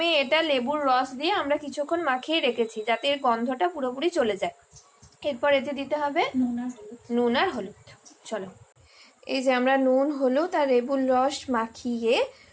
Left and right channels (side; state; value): both; identical; correlation 1.00